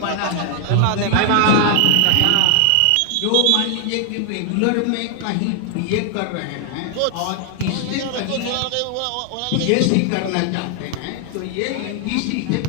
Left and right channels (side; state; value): both; different; correlation 0.00